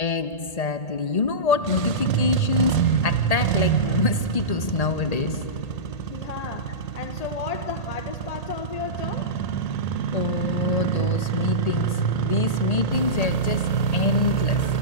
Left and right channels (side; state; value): right; late; 1.8 ms